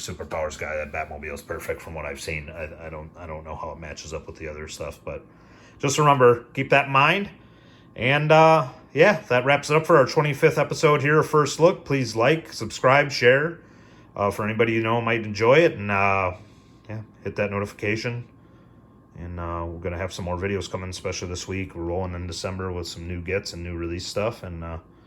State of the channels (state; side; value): identical; both; correlation 1.00